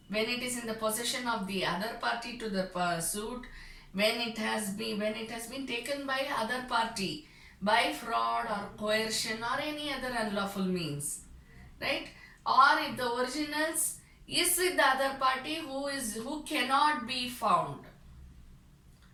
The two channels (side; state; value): both; identical; correlation 1.00